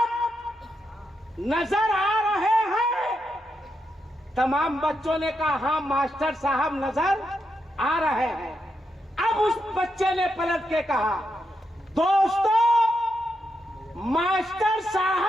नजर आ रहे हैं। तमाम बच्चों ने कहा हाँ मास्टर साहब नजर आ रहे हैं। अब उस बच्चे ने पलट के कहा दोस्तों, मास्टर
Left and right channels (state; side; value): normal; both; correlation 0.83